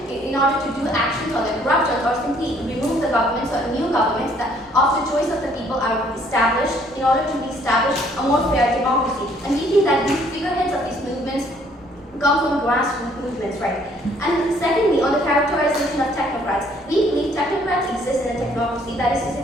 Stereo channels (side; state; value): both; normal; correlation 0.62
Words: in order to do actions or the corruption or simply remove the governments or new governments that of the choice of the people are established in order to establish a more fair democracy. And we think that these figureheads of these movements come from grassroots movements, right? And secondly, on the characterization of technocrats, we believe technocrats exist in a technocracy. That is to say